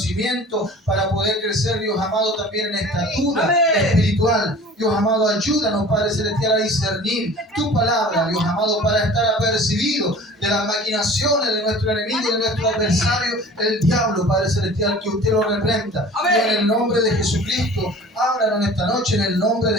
para poder crecer, Dios amado, también en estatura espiritual. Dios amado, ayúdanos, Padre Celestial, a discernir tu palabra, Dios amado, para estar apercibidos de las maquinaciones de nuestro enemigo y de nuestro adversario, el diablo, Padre Celestial, que usted lo reprenda. Y en el nombre de Jesucristo, háblanos esta noche en el nombre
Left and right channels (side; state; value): both; normal; correlation 0.44